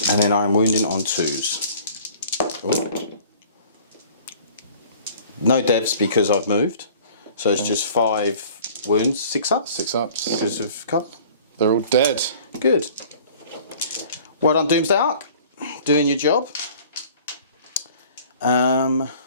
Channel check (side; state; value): both; inverted; correlation -0.50